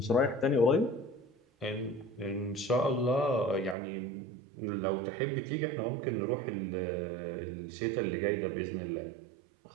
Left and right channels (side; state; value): left; drops out; at 3.8 s